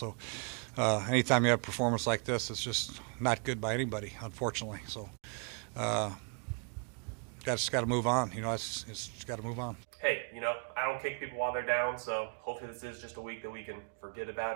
anytime you have a performance like this, it's just not good by anybody, unfortunately. So just got to move on. You know, it's just got to move on. Hey, you know, I don't kick people while they're down, so hopefully this is just a week that we can forget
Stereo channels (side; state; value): left; quieter; 38.3 dB